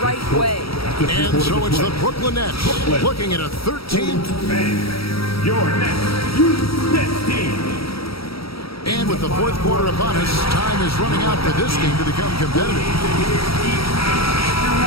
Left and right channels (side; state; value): right; late; 0.75 ms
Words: right way. And so it's the Brooklyn Nets looking at a 13th. Your next Nets team. And with the fourth quarter upon us, time is running out for this game to become competitive.